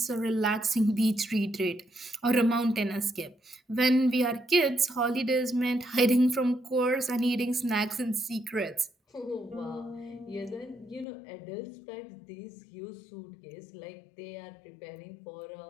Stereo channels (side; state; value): right; drops out; at 11.1 s